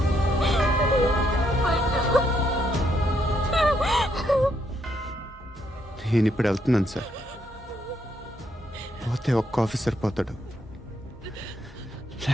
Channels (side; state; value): both; normal; correlation 0.75